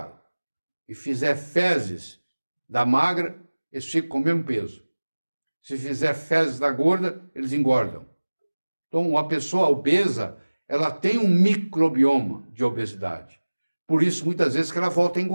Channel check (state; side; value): inverted; both; correlation -1.00